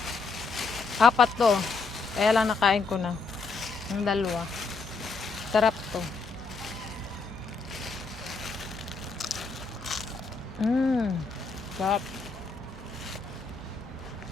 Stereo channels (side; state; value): right; quieter; 4.2 dB